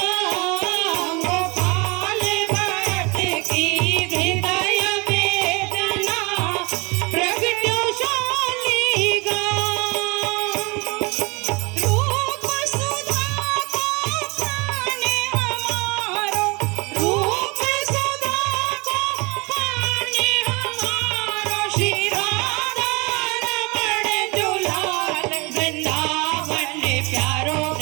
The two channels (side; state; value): left; quieter; 27.4 dB